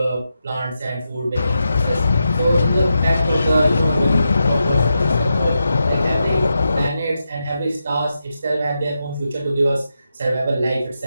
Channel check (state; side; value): inverted; both; correlation -0.87